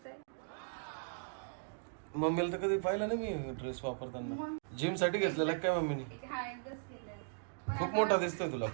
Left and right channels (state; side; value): silent; left; digital silence